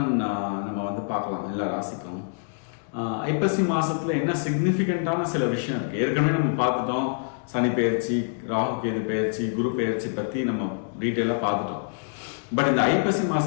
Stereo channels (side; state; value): right; silent; digital silence